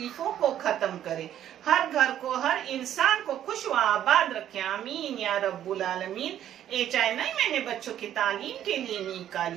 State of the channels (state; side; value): quieter; left; 11.1 dB